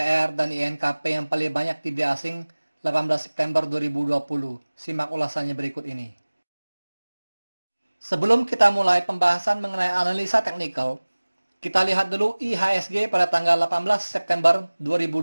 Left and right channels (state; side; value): inverted; both; correlation -1.00